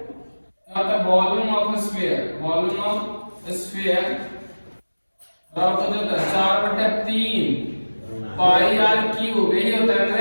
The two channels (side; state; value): both; inverted; correlation -1.00